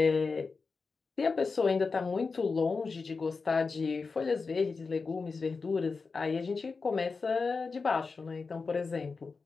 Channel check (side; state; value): right; quieter; 4.5 dB